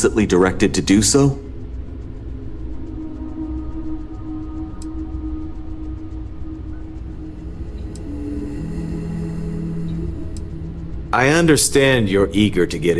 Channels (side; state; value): both; identical; correlation 1.00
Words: directed to do so? I understand you're eager to get